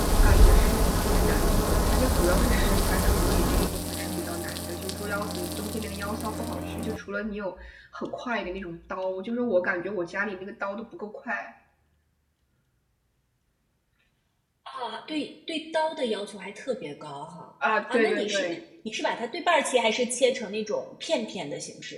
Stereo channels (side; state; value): both; identical; correlation 1.00